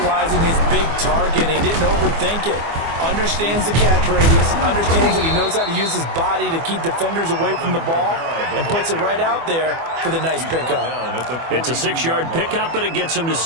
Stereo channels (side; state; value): left; late; 24 ms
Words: his big target. He didn't overthink it. Understands the catch radius. Understands that he knows how to use his body to keep defenders away from the ball. And puts it right out there for the nice pickup. It's a 6-yard pickup, but it gets him to